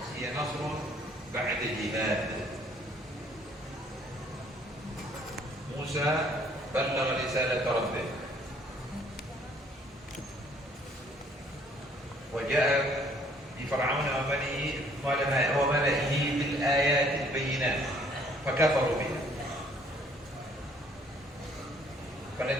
هي نصر بعد جهاد. موسى بلغ رسالة ربه وجاء لفرعون وملئه بالآيات البينات فكفروا بها،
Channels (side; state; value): both; normal; correlation 0.61